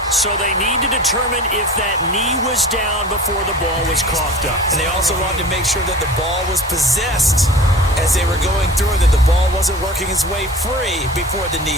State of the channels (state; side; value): normal; both; correlation 0.40